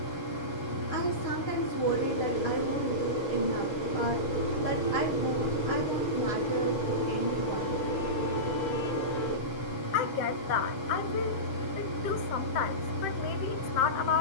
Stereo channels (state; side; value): late; right; 7.0 ms